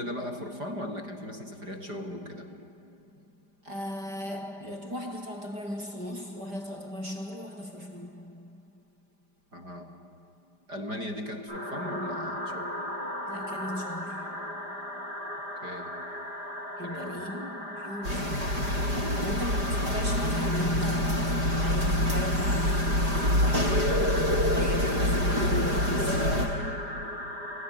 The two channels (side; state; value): left; late; 5.0 ms